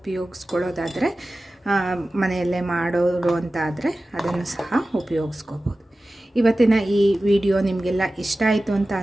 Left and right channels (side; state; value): both; normal; correlation 0.96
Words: ಮನೆಯಲ್ಲೇ ಮಾಡೋರು ಅಂತ ಆದರೆ ಅದನ್ನು ಸಹ ಉಪಯೋಗಿಸ್ಕೋಬೋದು. ಇವತ್ತಿನ ಈ ವಿಡಿಯೋ ನಿಮಗೆಲ್ಲ ಇಷ್ಟ ಆಯಿತು ಅಂತ